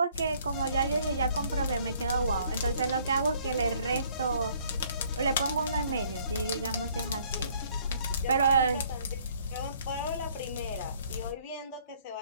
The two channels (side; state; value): both; inverted; correlation -0.61